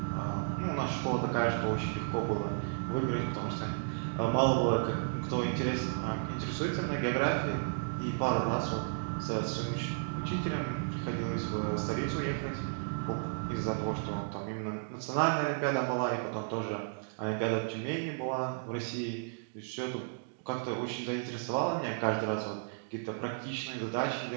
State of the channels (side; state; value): left; silent; digital silence